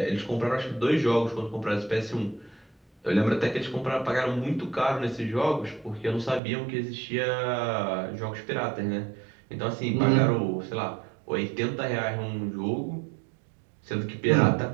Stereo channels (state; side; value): drops out; left; at 6.4 s